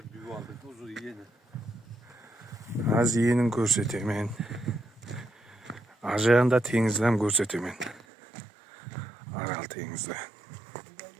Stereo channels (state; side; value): drops out; left; at 8.0 s